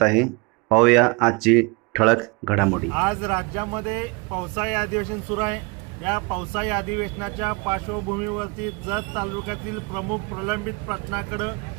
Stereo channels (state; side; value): quieter; left; 28.1 dB